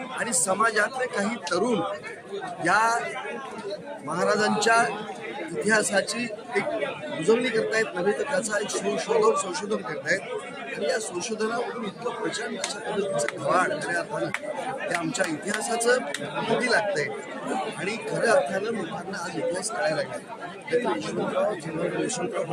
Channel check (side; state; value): both; identical; correlation 1.00